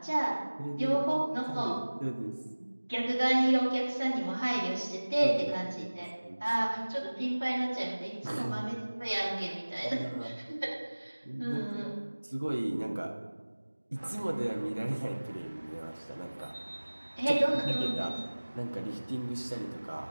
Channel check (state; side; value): inverted; both; correlation -1.00